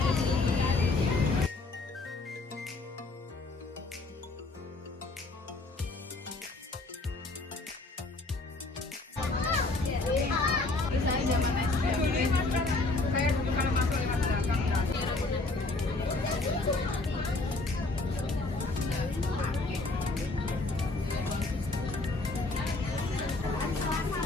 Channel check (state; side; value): quieter; right; 3.3 dB